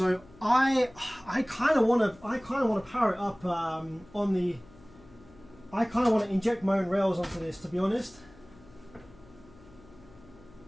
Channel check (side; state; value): left; noise; hum, 24 dB below the sound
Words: I kind of want to power it up on the. I kind of want to inject my own rails onto this, to be honest.